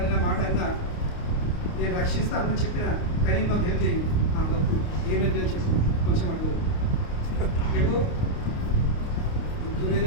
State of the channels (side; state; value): right; late; 29 ms